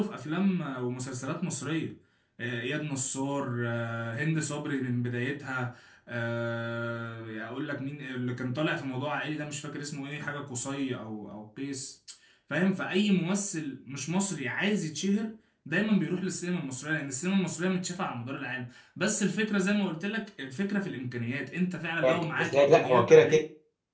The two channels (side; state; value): both; identical; correlation 1.00